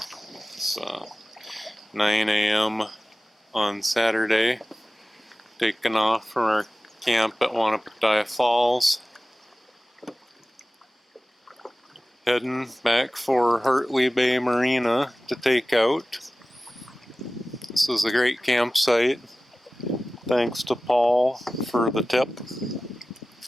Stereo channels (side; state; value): both; normal; correlation 0.96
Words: It's 9 a.m. on Saturday. Taking off from our camp at Wanapataya Falls. Heading back for Hartley Bay Marina to take out. This is a great campsite. Thanks to Paul for the tip.